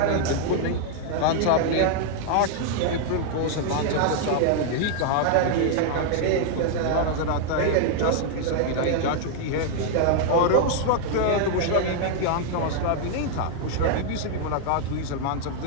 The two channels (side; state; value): both; different; correlation 0.00